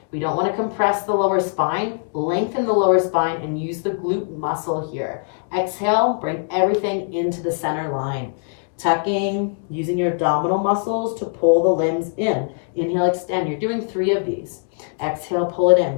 We don't want to compress the lower spine. Lengthen the lower spine and use the glute muscle here. Exhale, bring everything into the center line. Tucking, using your abdominal muscles to pull the limbs in. Inhale, extend. You're doing 3 of these. Exhale, pull it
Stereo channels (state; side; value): silent; right; 65 dB below the other